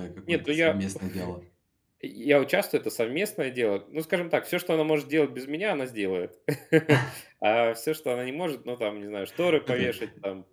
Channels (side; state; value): both; identical; correlation 1.00